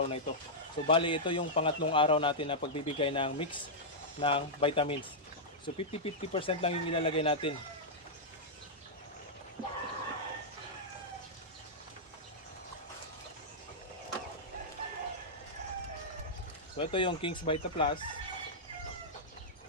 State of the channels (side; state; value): both; normal; correlation -0.09